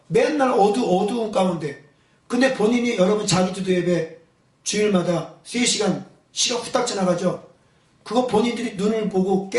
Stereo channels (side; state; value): both; identical; correlation 1.00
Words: 맨날 어두운 가운데. 근데 본인이 여러분 자기 기도 예배 주일마다 3시간 시간 후딱 지나가죠. 그거 본인들이 눈을 보고